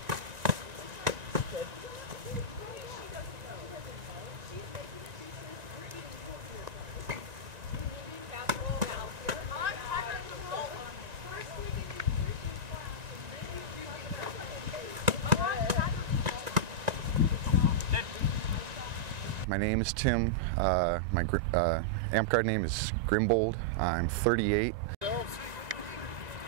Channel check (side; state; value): left; late; 1.9 ms